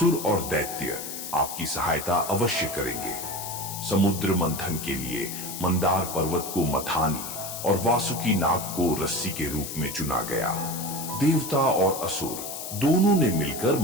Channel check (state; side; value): noise; left; hiss, 8 dB below the sound